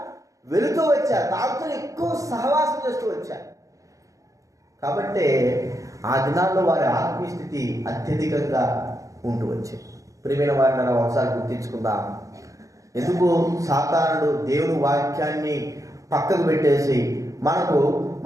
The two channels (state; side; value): late; left; 0.16 ms